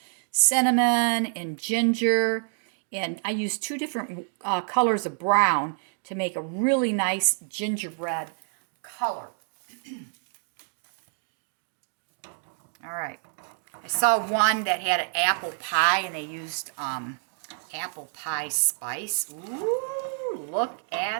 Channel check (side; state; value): left; silent; digital silence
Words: cinnamon, and ginger. And I used 2 different colors of brown to make a really nice gingerbread color. All right. I saw one that had an apple pie, and they used apple pie spice. Ooh, look